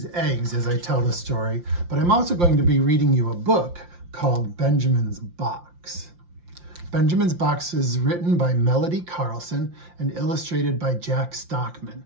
eggs as I tell the story, but I'm also going to be reading you a book called Benjamin's Box. Benjamin's Box is written by Melody Carlson and illustrated by Jack Stockman.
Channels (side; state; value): left; late; 5.7 ms